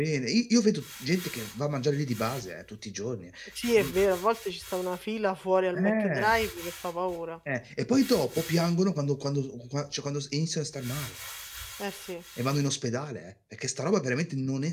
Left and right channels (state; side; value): identical; both; correlation 1.00